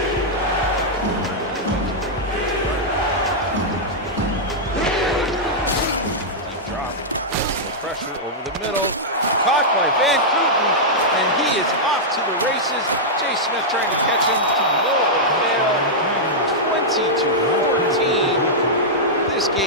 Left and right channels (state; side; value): normal; both; correlation -0.08